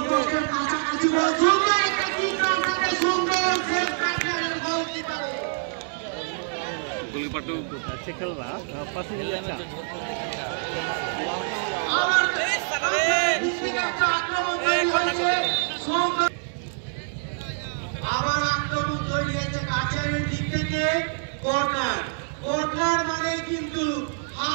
পোস্টের কাছাকাছি বল, সুন্দর একটা কিক রাখতে সুন্দর সেভ কাটিয়ারের গোলকিপারে। গোলকিপার তো अच्छे खेल रहा पास में अच्छा আমার দিক থেকে একটা আক্রমণ তৈরি হয়েছে, সুন্দর আবার আক্রমণ তৈরি হয়েছে কাটিয়ারের দিক থেকে। কর্নার, কর্নার মানে কিন্তু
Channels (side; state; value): left; silent; 61 dB below the other